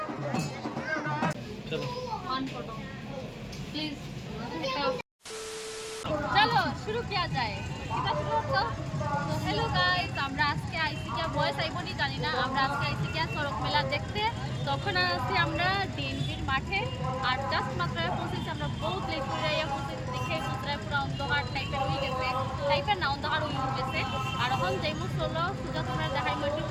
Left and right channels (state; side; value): identical; both; correlation 1.00